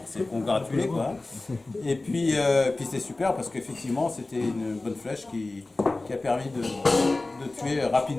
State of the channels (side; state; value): right; quieter; 3.1 dB